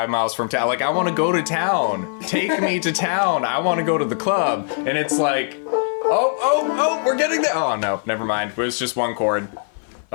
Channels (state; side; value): silent; right; 58 dB below the other